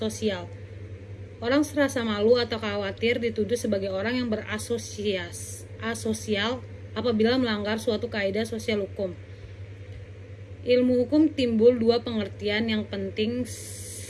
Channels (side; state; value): both; identical; correlation 1.00